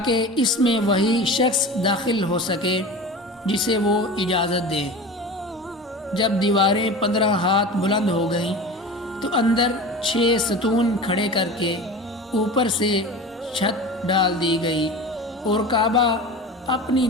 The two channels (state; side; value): normal; both; correlation 0.33